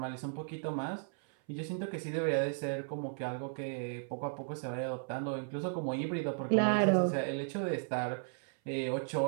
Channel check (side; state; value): left; silent; 54 dB below the other